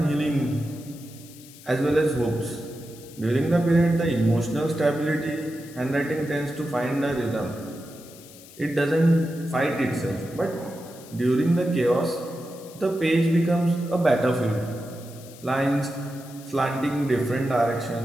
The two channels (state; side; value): noise; left; hiss, 20 dB below the sound